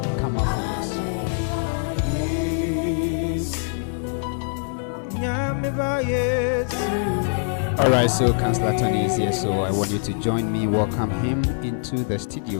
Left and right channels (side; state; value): right; silent; 63 dB below the other